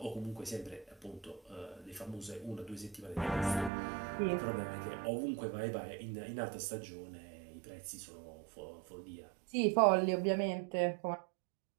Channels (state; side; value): drops out; left; at 3.7 s